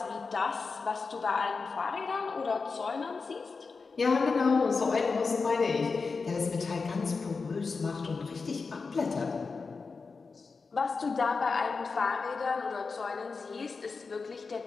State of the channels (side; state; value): right; quieter; 4.6 dB